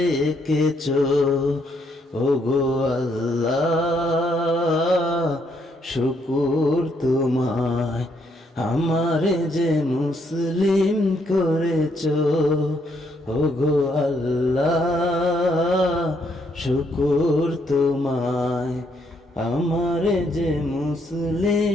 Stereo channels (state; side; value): normal; both; correlation 0.73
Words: এঁকেছ। ওগো আল্লাহ শুকুর তোমায় আমারে যে মুসলিম করেছ। ওগো আল্লাহ শুকুর তোমায় আমারে যে